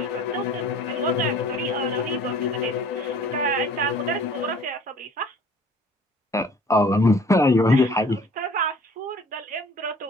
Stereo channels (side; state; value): both; normal; correlation 0.50